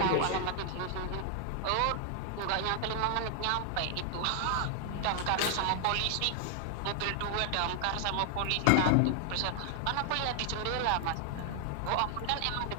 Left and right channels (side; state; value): both; different; correlation 0.00